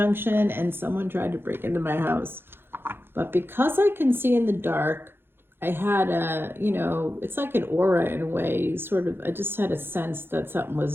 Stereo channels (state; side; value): late; left; 0.10 ms